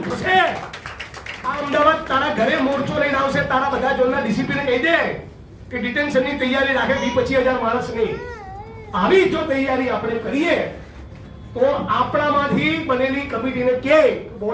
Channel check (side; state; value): both; identical; correlation 1.00